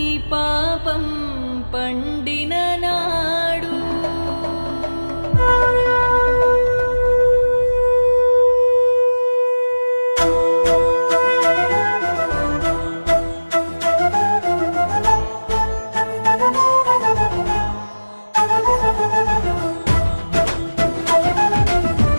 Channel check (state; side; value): inverted; both; correlation -1.00